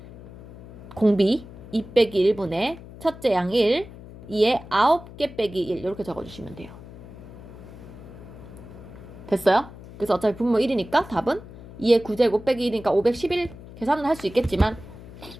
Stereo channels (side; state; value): left; noise; hum, 16 dB below the sound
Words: 공비 2 빼기 1분의 첫째 항 1, 2의 9개 빼기 1 이렇게 적어주시면 돼요. 됐어요? 그래서 어차피 분모 1이니까 답은 2의 9제곱 빼기 1이니까 511 계산은 할 수 있겠지만